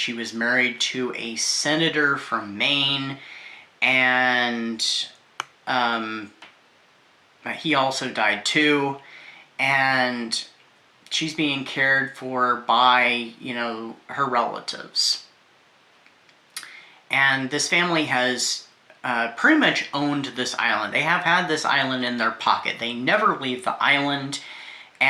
was married to a senator from Maine, and he also died too, and she's being cared for by, you know, her relatives. And this family has pretty much owned this island. They have had this island in their pocket. They never leave the island,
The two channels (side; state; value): both; identical; correlation 1.00